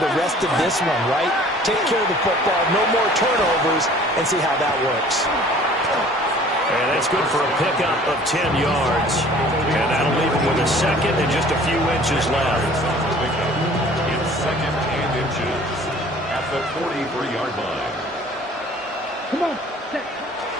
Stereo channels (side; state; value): both; normal; correlation 0.50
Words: rest of this one, right? Take care of the football, no more turnovers, and see how that works. And that's good for a pickup of 10 yards. And that'll leave him with a 2nd and just a few inches left. It's 2nd and inches at the 43-yard line. Come on.